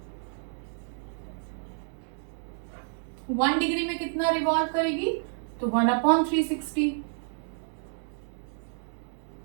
1 डिग्री में कितना रिवॉल्व करेगी तो 1/360।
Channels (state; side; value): silent; left; digital silence